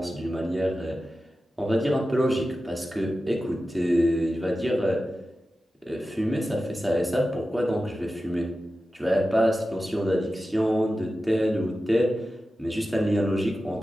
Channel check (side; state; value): both; normal; correlation 0.93